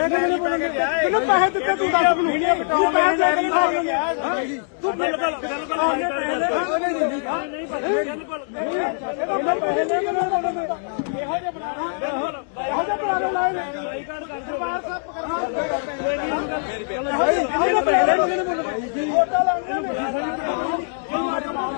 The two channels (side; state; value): right; silent; digital silence